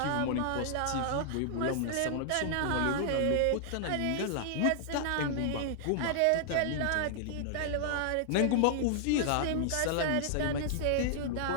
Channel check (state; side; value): different; both; correlation -0.01